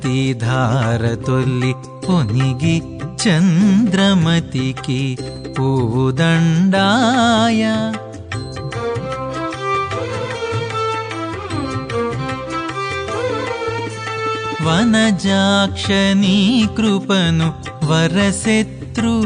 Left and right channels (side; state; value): both; identical; correlation 1.00